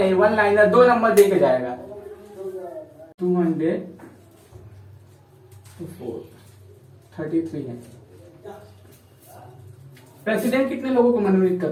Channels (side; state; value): both; identical; correlation 1.00